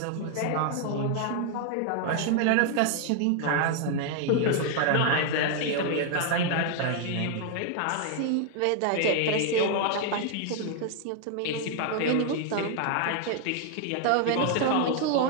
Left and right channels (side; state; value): both; different; correlation 0.00